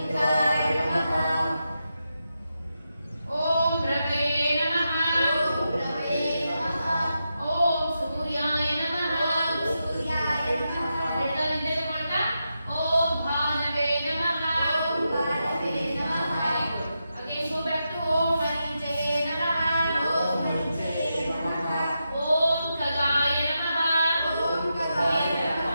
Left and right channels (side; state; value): both; inverted; correlation -0.87